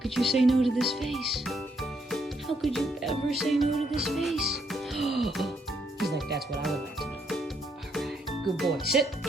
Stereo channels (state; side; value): normal; both; correlation 0.74